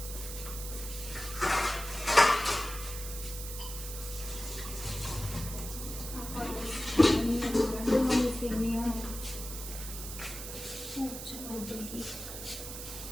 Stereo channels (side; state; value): right; noise; hiss, 9 dB below the sound